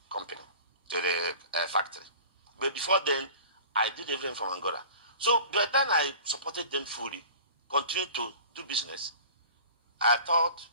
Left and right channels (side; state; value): both; inverted; correlation -0.41